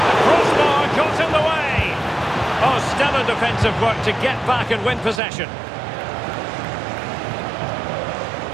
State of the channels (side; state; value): left; drops out; at 5.2 s